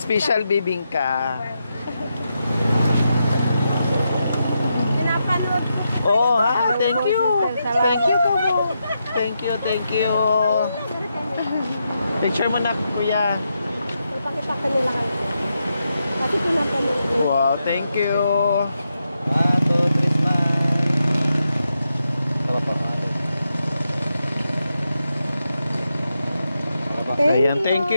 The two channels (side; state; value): both; inverted; correlation -0.85